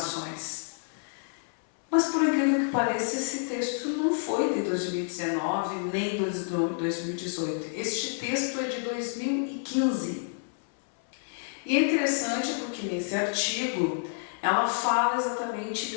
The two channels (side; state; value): right; silent; 59 dB below the other